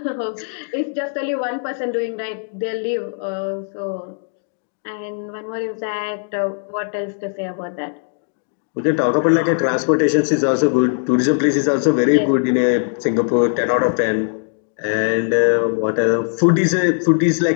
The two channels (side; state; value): right; silent; digital silence